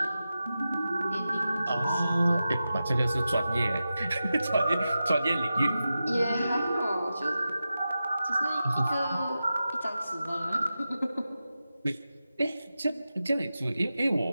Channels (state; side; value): inverted; both; correlation -0.92